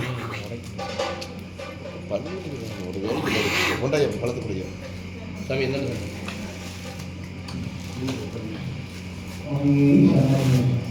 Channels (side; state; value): both; identical; correlation 1.00